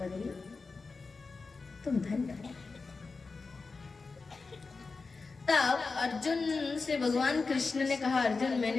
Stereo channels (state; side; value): quieter; right; 4.2 dB